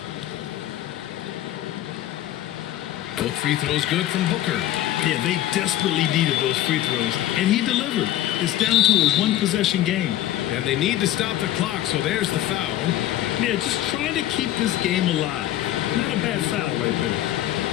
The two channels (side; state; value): right; quieter; 13.4 dB